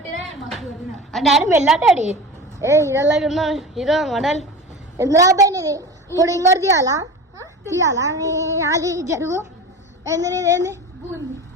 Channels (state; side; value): normal; both; correlation 0.32